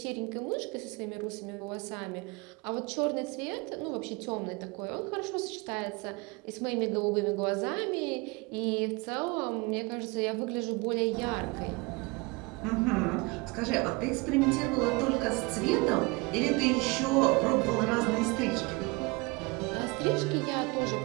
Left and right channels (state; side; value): quieter; left; 26.9 dB